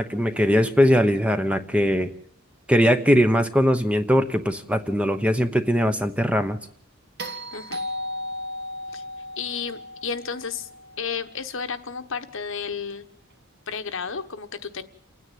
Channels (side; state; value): both; normal; correlation 0.79